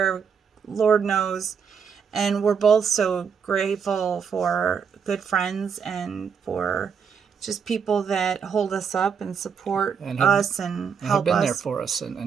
Lord knows. And we're both so grateful for good friends and for just people that hold us up and support and us and have help been there us. for us and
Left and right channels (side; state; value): left; quieter; 6.6 dB